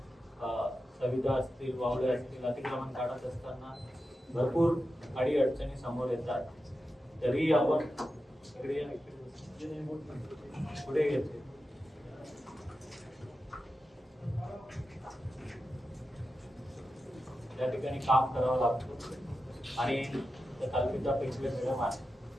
सविधा असतील, वावडे असतील, अतिक्रमण काढत असताना भरपूर अडचणी समोर येतात. तरी आपण पुढे येते त्या ठिकाणी काम करावं लागतं. आणि कल्पिता पेशवे मॅडम आहे,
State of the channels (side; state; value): both; normal; correlation 0.91